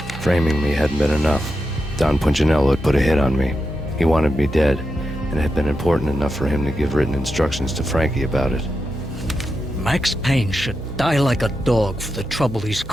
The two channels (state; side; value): normal; both; correlation 0.88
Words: Framing me hadn't been enough. Don Punchinello had put a hit on me. He wanted me dead, and it had been important enough for him to give written instructions to Frankie about it. Max Payne should die like a dog for the trouble he's